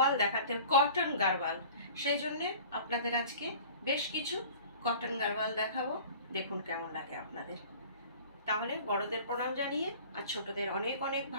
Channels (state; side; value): inverted; both; correlation -0.44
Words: দেখাতে, কটন গারওয়াল, সেই জন্যে আপনাদের আজকে বেশ কিছু কটন গারওয়াল দেখাবো। দেখুন কেমন লাগে আপনাদের। তাহলে বড়দের প্রণাম জানিয়ে আর ছোটদের অনেক অনেক